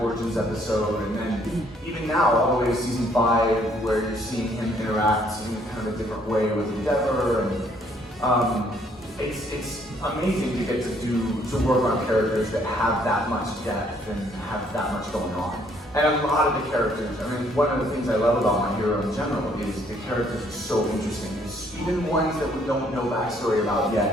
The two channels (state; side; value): normal; both; correlation 0.65